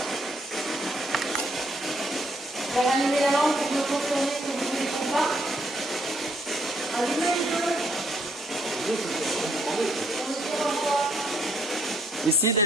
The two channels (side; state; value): both; normal; correlation 0.71